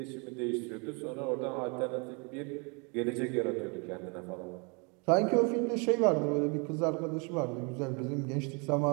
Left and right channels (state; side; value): quieter; left; 33.0 dB